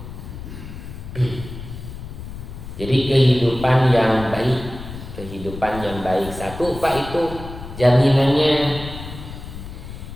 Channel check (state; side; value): noise; left; rumble, 11 dB below the sound